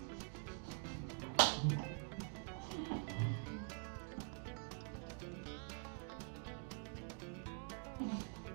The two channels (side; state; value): left; quieter; 39.3 dB